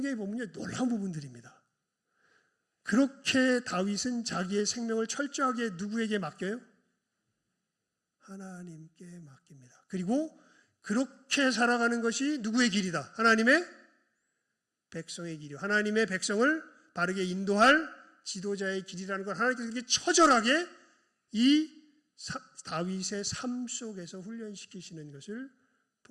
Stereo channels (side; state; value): both; identical; correlation 1.00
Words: 보면 놀라운 부분들입니다. 그렇게 다윗은 자기의 생명을 철저하게 누구에게 맡겨요? 하나님께 맡깁니다. 그리고 그렇게 살아가는 것이 누구의 길이다? 하나님의 백성의 길이요. 하나님의 백성을 바르게 인도할 지도자의 길이라는 걸 하나님께서 이렇게 처절하게 이 다윗의 삶 속에서 훈련시키시는 것을